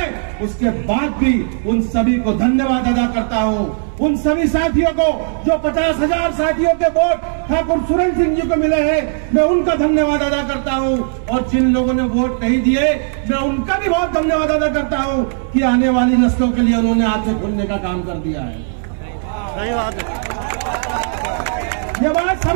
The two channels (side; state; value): left; silent; digital silence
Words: उसके बाद भी उन सभी को धन्यवाद अदा करता हूं, उन सभी साथियों को जो 50,000 साथियों के वोट ठाकुर सुरेंद्र सिंह जी को मिले हैं, मैं उनका धन्यवाद अदा करता हूं। और जिन लोगों ने वोट नहीं दिए, मैं उनका भी बहुत धन्यवाद अदा करता हूं कि आने वाली नस्लों के लिए उन्होंने आंखें खोलने का काम कर दिया है। सही बात है, ये बात